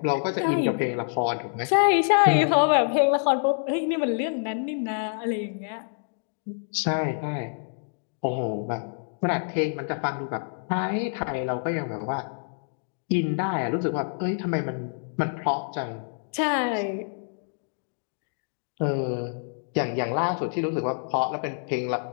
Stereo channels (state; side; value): silent; right; digital silence